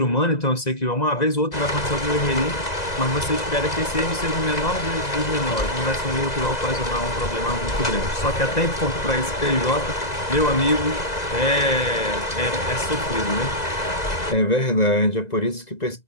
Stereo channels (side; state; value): right; late; 2.0 ms